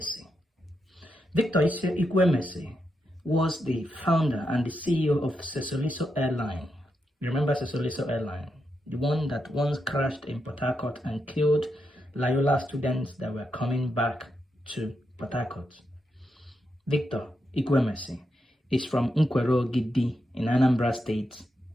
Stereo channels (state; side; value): normal; both; correlation 0.84